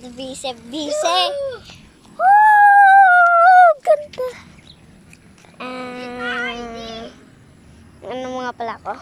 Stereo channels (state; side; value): identical; both; correlation 1.00